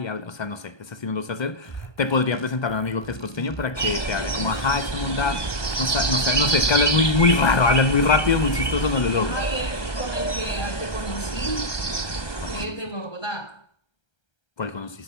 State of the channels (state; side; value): late; right; 1.3 ms